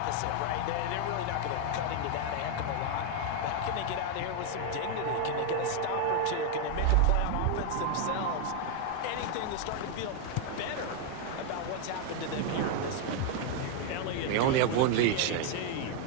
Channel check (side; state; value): both; different; correlation 0.00